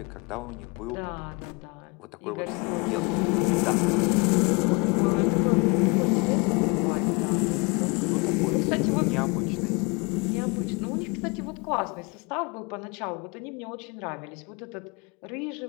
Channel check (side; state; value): right; quieter; 29.1 dB